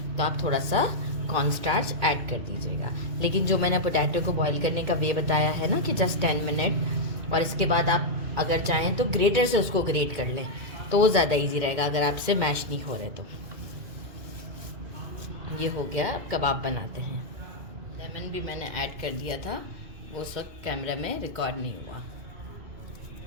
तो आप थोड़ा सा कॉर्न स्टार्च ऐड कर दीजिएगा। लेकिन जो मैंने पोटैटो को बॉईल करने का वे बताया है ना कि जस्ट 10 मिनट, और इसके बाद आप अगर चाहें तो ग्रेटर से उसको ग्रेट कर लें तो वो ज़्यादा इजी रहेगा अगर आपसे मैश नहीं हो रहे तो। ये हो गया, कबाब बनाते हैं। लेमन भी मैंने ऐड कर दिया था, वो सब कैमरा में रिकॉर्ड नहीं हुआ।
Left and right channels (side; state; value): left; late; 2.5 ms